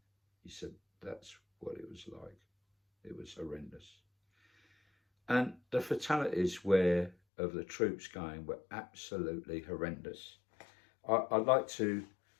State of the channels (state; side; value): drops out; right; at 7.2 s